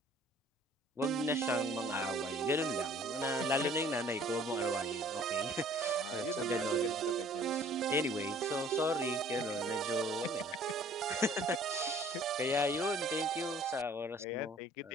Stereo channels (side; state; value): both; normal; correlation 0.54